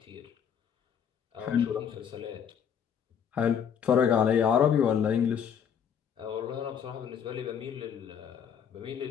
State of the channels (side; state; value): right; quieter; 7.9 dB